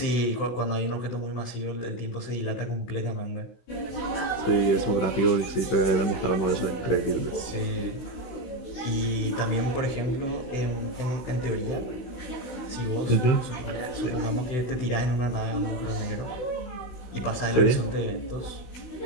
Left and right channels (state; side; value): late; right; 16 ms